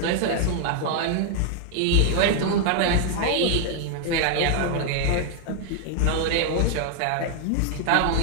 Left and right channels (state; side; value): different; both; correlation 0.00